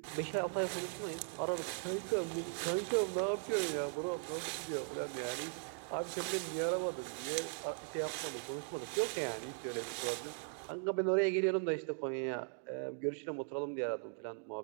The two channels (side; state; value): left; silent; 52 dB below the other